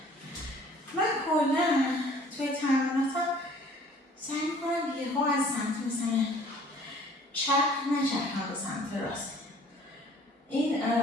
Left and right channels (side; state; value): both; normal; correlation 0.53